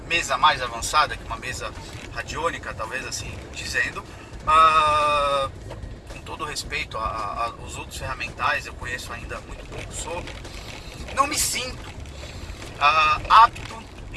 mesa mais avançada que uma mesa radiônica, talvez assim dizendo, com todo respeito aos outros ferramentais, eu conheço ainda muito pouco sobre, não me sinto apto,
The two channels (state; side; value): identical; both; correlation 1.00